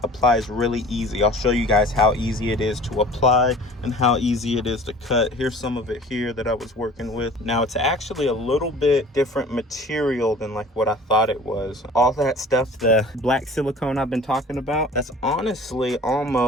applies really easy. I'll show you guys how easy it is to apply and how easy it is to cut. Here's some of it here that I was working with. Now it's actually a little bit different material than like what I thought it was. All that stuff, the black silicone I've been talking about, that's honestly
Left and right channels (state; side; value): normal; both; correlation 0.44